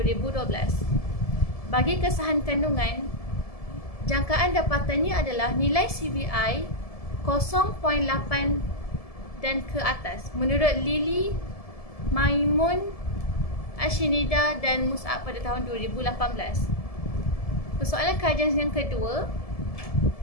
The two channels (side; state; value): right; late; 1.7 ms